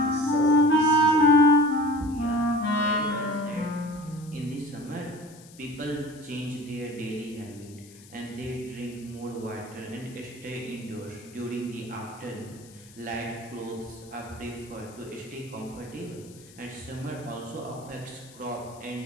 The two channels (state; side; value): noise; left; hiss, 22 dB below the sound